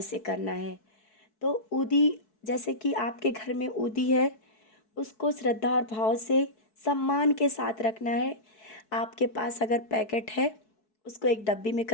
करना है। तो ऊदी, जैसे कि आपके घर में ऊदी है, उसको श्रद्धा और भाव से सम्मान के साथ रखना है। आपके पास अगर पैकेट है, उसको एक डब्बी में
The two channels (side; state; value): right; late; 4.6 ms